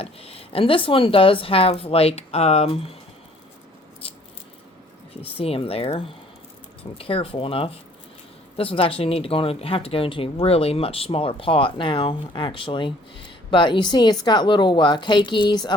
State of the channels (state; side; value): normal; both; correlation 0.58